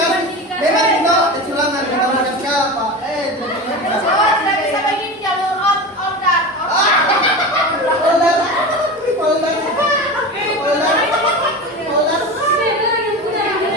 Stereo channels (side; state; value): both; normal; correlation 0.27